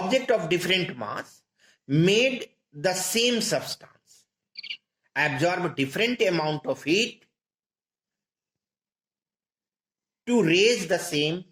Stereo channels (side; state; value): both; identical; correlation 1.00